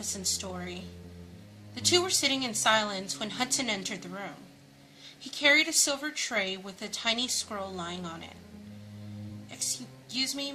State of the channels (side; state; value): both; identical; correlation 1.00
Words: story. The two were sitting in silence when Hudson entered the room. He carried a silver tray with a tiny scroll lying on it. "Excuse me,